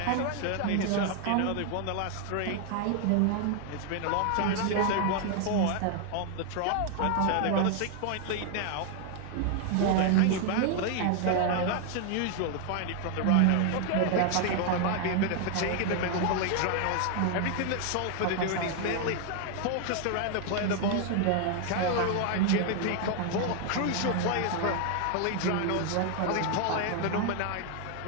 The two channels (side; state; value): both; different; correlation 0.00